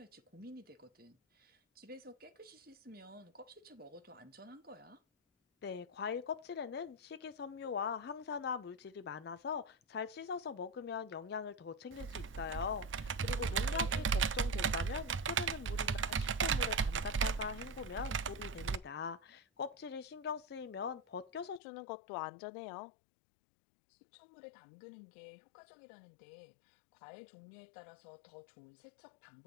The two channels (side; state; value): right; drops out; at 21.6 s